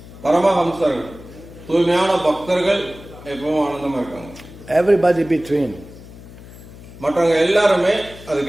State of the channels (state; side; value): noise; left; hum, 18 dB below the sound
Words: பரமஹம்சர்கள் தூய்மையான பக்தர்கள் எப்பவும் ஆனந்தமா இருக்காங்க. Everybody between. மற்றவங்க எல்லாருமே